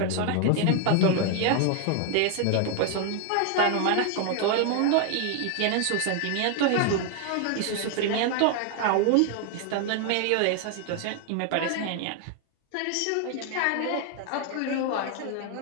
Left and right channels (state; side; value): different; both; correlation 0.00